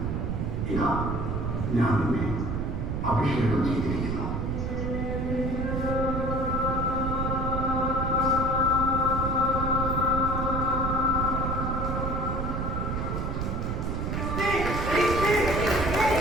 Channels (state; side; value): noise; right; rumble, 1 dB below the sound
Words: ഇതാ ഞാൻ നിന്നെ അഭിഷേകം ചെയ്തിരിക്കുന്നു.